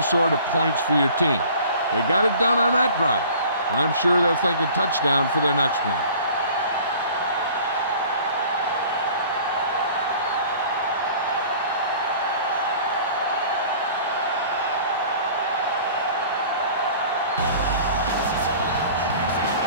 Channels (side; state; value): both; inverted; correlation -0.47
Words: sort of points for your team. They got it done on that drive. I'm sure they're thinking touchdown for their next one.